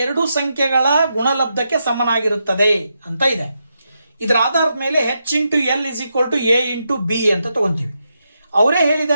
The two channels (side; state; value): both; inverted; correlation -0.84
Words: ಸಂಖ್ಯೆಗಳ ಗುಣಲಬ್ಧಕ್ಕೆ ಸಮನಾಗಿರುತ್ತದೆ ಅಂತ ಇದೆ. ಇದರ ಆಧಾರದ ಮೇಲೆ H into L is equal to A into B ಅಂತ ತಗೊಂತೀವಿ. ಅವರೇ